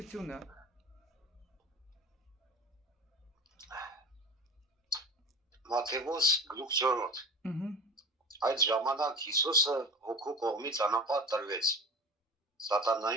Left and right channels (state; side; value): normal; both; correlation 0.34